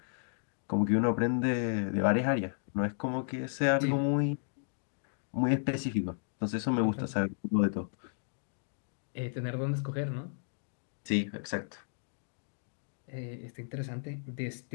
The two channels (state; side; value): silent; right; digital silence